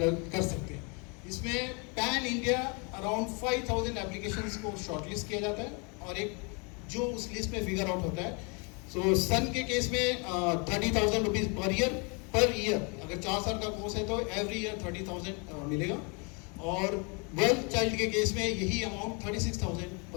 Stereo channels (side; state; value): right; quieter; 32.8 dB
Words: सकते हैं। इसमें पैन इंडिया अराउंड 5,000 एप्लीकेशंस को शॉर्टलिस्ट किया जाता है और एक जो उस लिस्ट में फिगर आउट होता है। सो सन के केस में 30,000 रुपीज़ पर ईयर अगर 4 साल का कोर्स है तो एवरी ईयर 30,000 मिलेगा, और 12th चाइल्ड के केस में यही अमाउंट 36,000